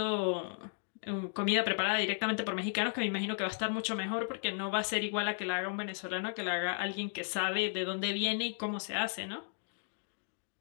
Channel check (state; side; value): silent; right; digital silence